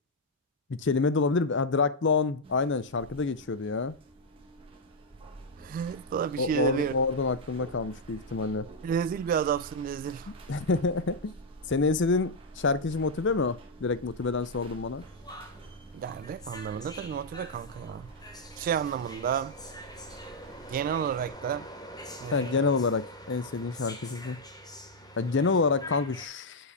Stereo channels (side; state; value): both; normal; correlation -0.02